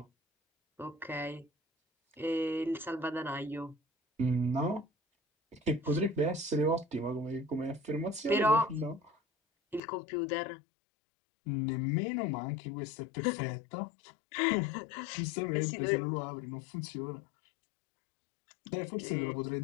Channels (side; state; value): right; drops out; at 9.8 s